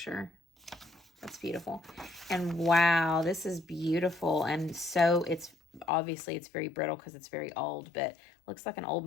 That's beautiful. And wow, this is beautiful. And so it's obviously it's very brittle because it's very old, but looks like an old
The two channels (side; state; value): right; drops out; at 5.9 s